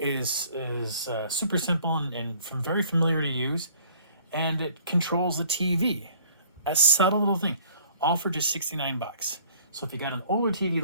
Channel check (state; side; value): inverted; both; correlation -0.55